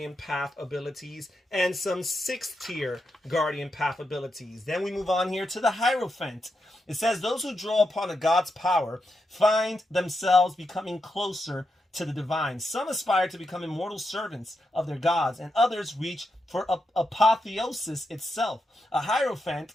path abilities, and some 6th tier Guardian path abilities. Then we move on here to the Hierophant. It says those who draw upon a god's power find themselves becoming closer to the divine. Some aspire to become immortal servants of their gods, and others reach for apotheosis itself. A Hierophant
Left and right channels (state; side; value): normal; both; correlation 0.85